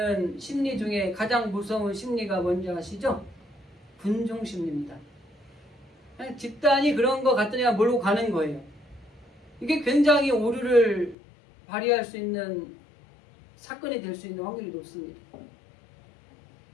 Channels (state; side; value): drops out; right; at 11.2 s